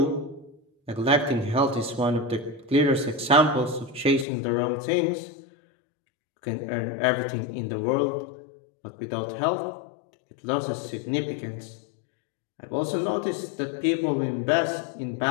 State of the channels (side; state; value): right; drops out; at 4.2 s